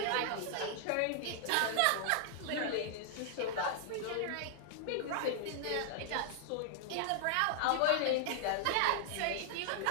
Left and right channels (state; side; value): different; both; correlation -0.01